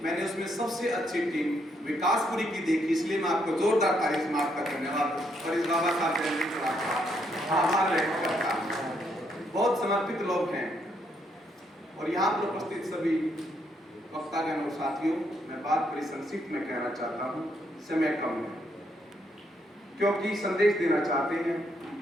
मैंने उसमें सबसे अच्छी टीम विकासपुरी की देखी। इसलिए मैं आपको जोरदार तारीफ में आपका धन्यवाद और इस बाबा साहब आभार व्यक्त करता हूँ। बहुत समर्पित लोग हैं और यहाँ पर उपस्थित सभी वक्तागण और साथियों, मैं बात बड़ी संक्षिप्त में कहना चाहता हूँ, समय कम है, क्योंकि संदेश देना चाहते हैं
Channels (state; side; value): normal; both; correlation 0.74